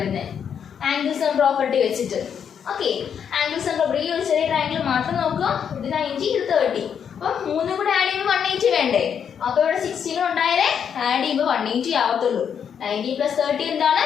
ആംഗിൾ സം പ്രോപ്പർട്ടി വെച്ചിട്ട്. ഓക്കെ, ആംഗിൾ സം പ്രോപ്പർട്ടി ഈ ഒരു ചെറിയ ട്രയാങ്കിൾ മാത്രം നോക്കുക. ഇത് 90 ഇത് 30. അപ്പൊ 3 കൂടെ ആഡ് ചെയ്യുമ്പോൾ 180 വേണ്ടേ? അപ്പൊ ഇവിടെ 60 ഉണ്ടായാലേ ആഡ് ചെയ്യുമ്പോൾ 180 ആവത്തുള്ളൂ. 90 + 30 എന്താണ്?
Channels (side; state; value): right; quieter; 7.8 dB